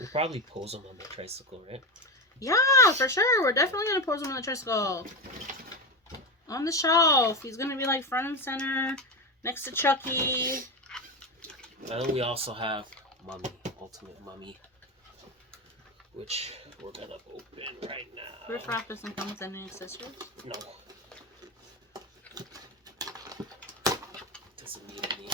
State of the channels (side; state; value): both; normal; correlation 0.16